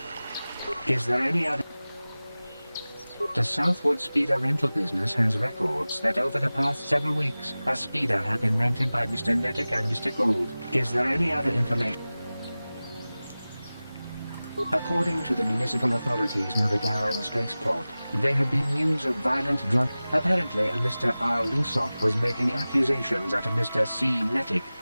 Is there any other... The Southwood Speeder rental business has records that over the past several weeks, a speeder had been rented by Mr. Nettic and Mr. Gould. Is there any other information? According to the municipal authorities near the Darren spaceport, there had been news of violent drug... Apparently, a Mr. R. Lusoff was making accusations at a Mr. C. Nettic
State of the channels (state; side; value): inverted; both; correlation -0.97